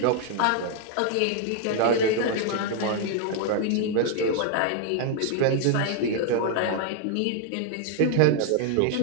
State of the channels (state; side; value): different; both; correlation 0.00